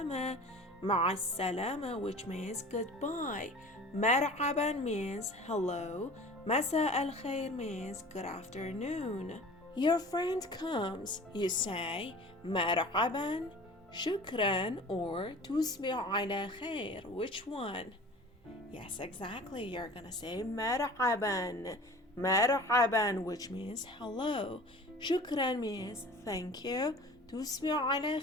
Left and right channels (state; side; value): normal; both; correlation 0.42